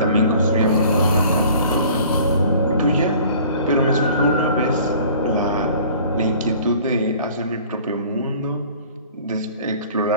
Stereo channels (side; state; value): both; inverted; correlation -0.49